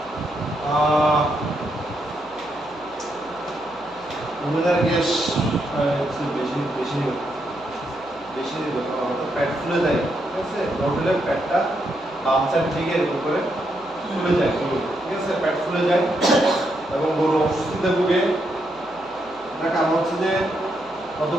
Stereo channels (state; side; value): noise; right; hum, 28 dB below the sound